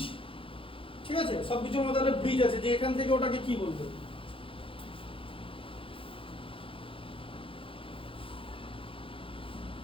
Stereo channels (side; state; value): right; late; 0.26 ms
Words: ঠিক আছে? সবকিছুর মধ্যে একটা ব্রিজ আছে, যে এখান থেকে ওটাকে কি বলবে।